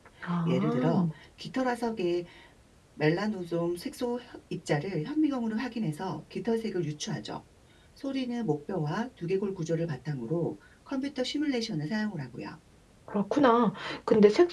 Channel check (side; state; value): both; identical; correlation 1.00